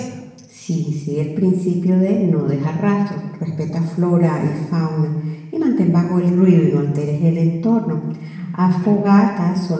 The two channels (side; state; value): both; identical; correlation 1.00